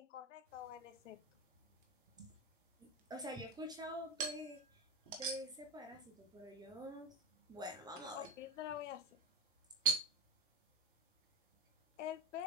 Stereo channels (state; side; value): normal; both; correlation 0.11